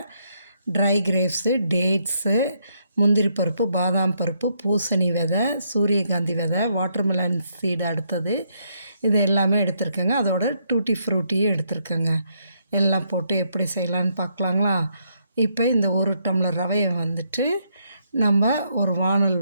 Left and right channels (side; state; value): both; inverted; correlation -0.75